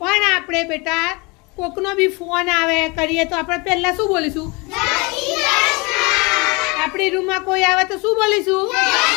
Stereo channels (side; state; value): right; quieter; 27.6 dB